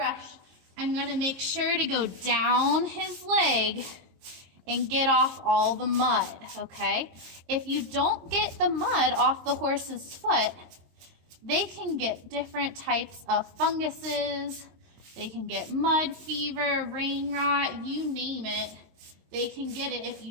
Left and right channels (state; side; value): late; left; 22 ms